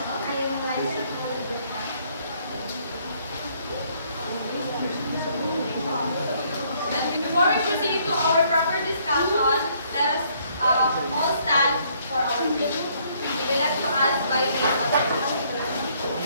I am Liza Calderon. And before we proceed to our proper discussion, let us all stand for our pledge. We will like to ask by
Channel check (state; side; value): inverted; both; correlation -0.66